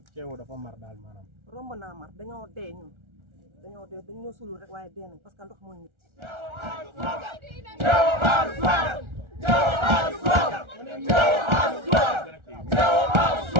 Thiéo dafa mar daal maanaam. romb naa mar dañoo dee ñun dañoo sulul rek waaye dee nañ parce que ndox mooy nit.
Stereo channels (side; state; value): left; late; 1.4 ms